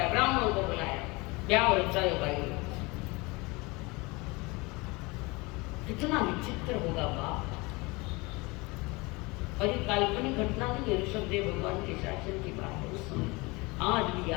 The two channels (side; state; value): right; quieter; 25.1 dB